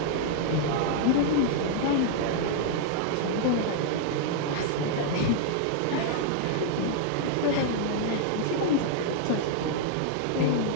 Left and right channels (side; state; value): both; different; correlation -0.01